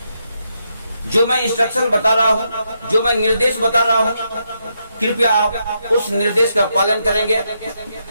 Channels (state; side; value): inverted; both; correlation -0.81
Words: जो मैं instruction बता रहा हूँ, जो मैं निर्देश बता रहा हूँ, कृपया आप उस निर्देश का पालन करेंगे